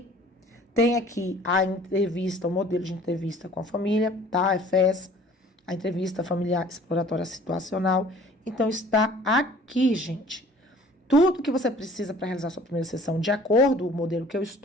Tem aqui a entrevista, o modelo de entrevista com a família, tá? A FES, a entrevista familiar exploratória situacional. Então, está aqui, gente. Tudo que você precisa para realizar sua primeira sessão, de acordo com o modelo que eu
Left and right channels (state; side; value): normal; both; correlation 0.51